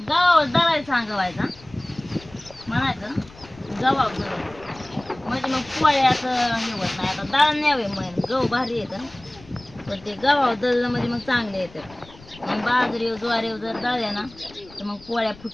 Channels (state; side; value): noise; left; rumble, 22 dB below the sound